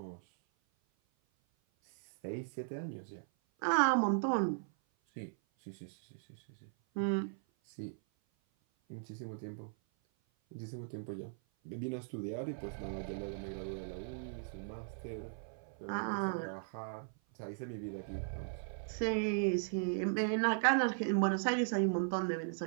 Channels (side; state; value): left; silent; 53 dB below the other